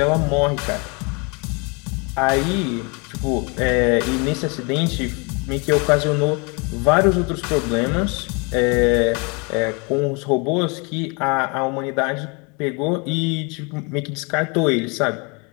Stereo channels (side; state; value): right; quieter; 31.4 dB